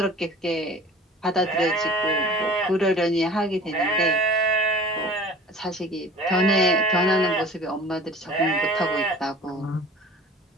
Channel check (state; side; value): normal; both; correlation 0.43